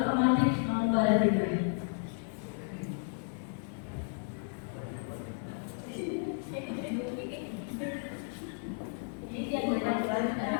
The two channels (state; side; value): silent; right; 55 dB below the other